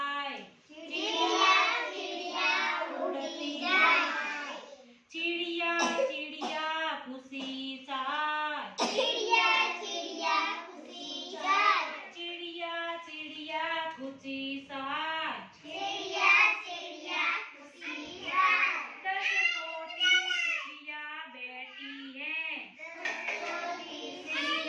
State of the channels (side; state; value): both; identical; correlation 1.00